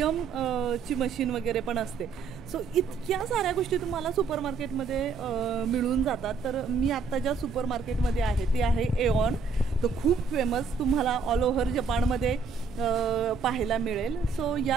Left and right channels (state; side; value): quieter; left; 5.0 dB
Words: ची मशीन वगैरे पण असते. सो इतक्या साऱ्या गोष्टी तुम्हाला सुपर मार्केटमध्ये मिळून जातात. तर मी आत्ता ज्या सुपर मार्केटमध्ये आहे ते आहे एऑन. तो खूप फेमस तुम्हाला ऑल ओव्हर जपानमध्ये पाहायला मिळेल. सो